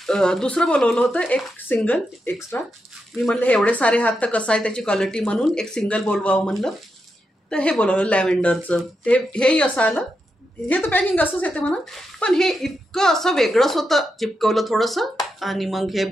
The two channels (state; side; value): normal; both; correlation 0.85